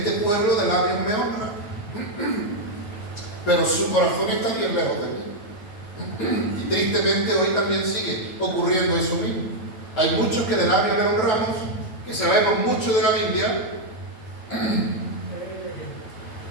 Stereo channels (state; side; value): late; right; 9.0 ms